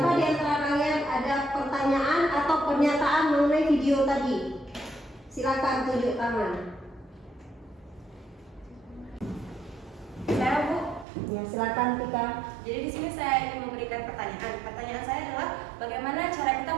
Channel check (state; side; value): drops out; left; at 11.1 s